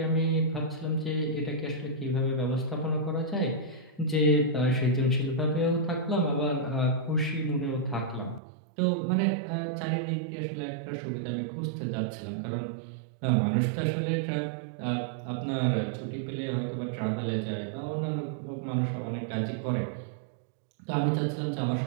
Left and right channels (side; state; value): left; drops out; at 8.4 s